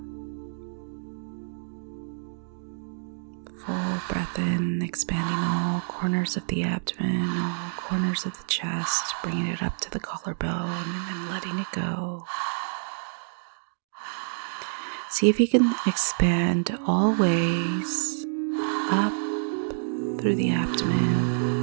Full breath in, expanding all corners of the abdomen, all corners of the chest, bringing it up to the collarbone, and then letting it go. See if you can expand all ways up through the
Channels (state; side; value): silent; left; digital silence